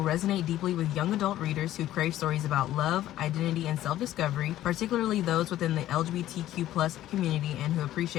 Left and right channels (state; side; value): quieter; right; 13.6 dB